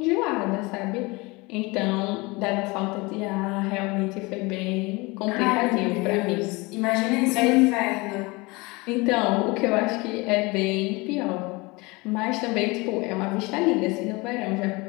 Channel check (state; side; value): quieter; right; 24.8 dB